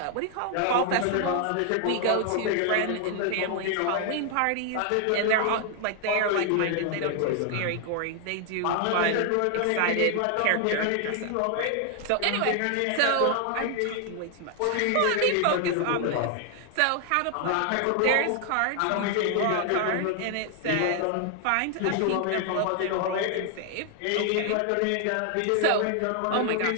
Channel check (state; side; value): different; both; correlation 0.00